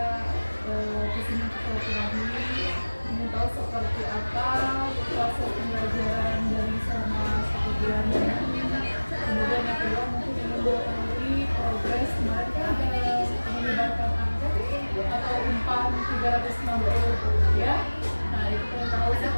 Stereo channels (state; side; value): inverted; both; correlation -1.00